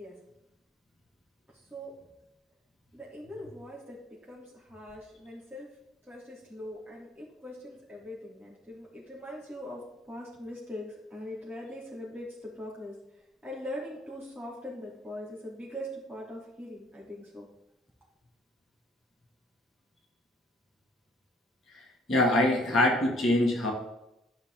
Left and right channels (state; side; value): normal; both; correlation 0.59